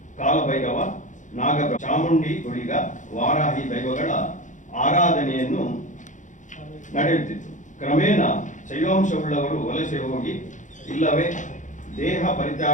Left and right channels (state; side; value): late; right; 0.36 ms